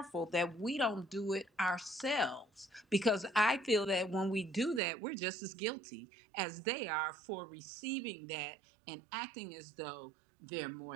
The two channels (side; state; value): left; drops out; at 4.8 s